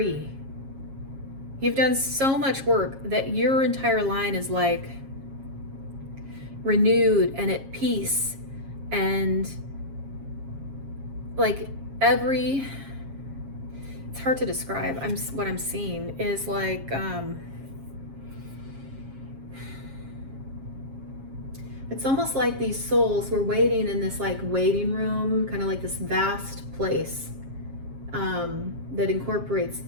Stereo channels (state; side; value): late; left; 7.4 ms